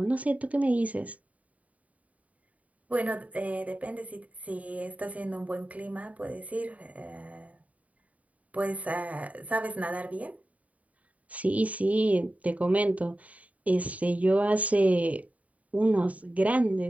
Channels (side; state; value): left; late; 0.070 ms